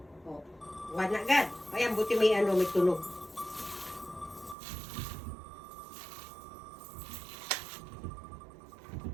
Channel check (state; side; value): drops out; left; at 4.5 s